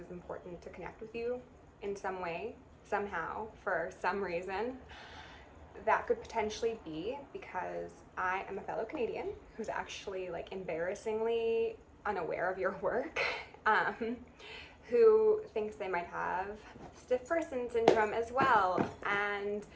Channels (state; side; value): identical; both; correlation 1.00